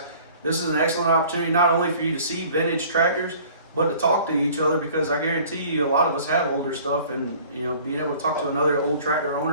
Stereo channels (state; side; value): inverted; both; correlation -0.50